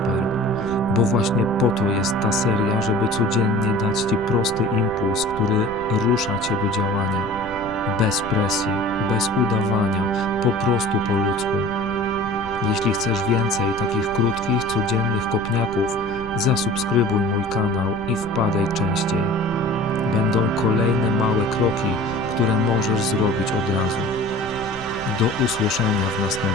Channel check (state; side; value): noise; right; rumble, 13 dB below the sound